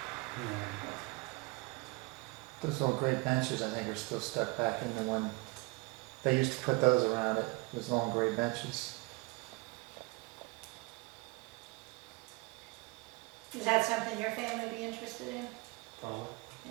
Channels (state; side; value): quieter; left; 26.0 dB